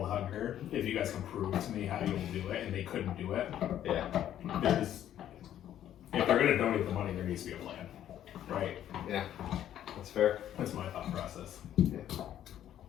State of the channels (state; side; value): quieter; right; 11.2 dB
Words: hunger if you guys can prove to me how you'll do it, and they couldn't do it. Yeah. If they're going to donate the money, there needs to be a plan, right? Yeah. That's fair. That's my thought process. Yeah.